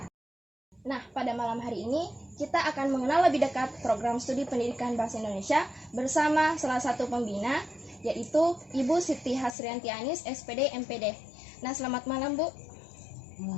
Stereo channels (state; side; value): drops out; right; at 9.6 s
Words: Nah, pada malam hari ini kita akan mengenal lebih dekat program studi pendidikan bahasa Indonesia bersama salah satu pembina, yaitu Ibu Siti Hasrianti Anis, SPD MPD. Nah, selamat malam, Bu.